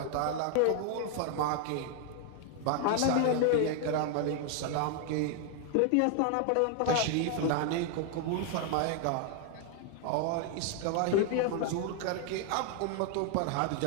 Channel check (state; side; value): different; both; correlation 0.00